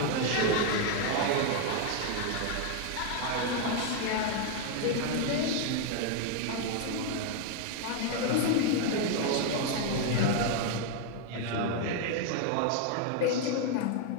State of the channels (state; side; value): different; both; correlation 0.00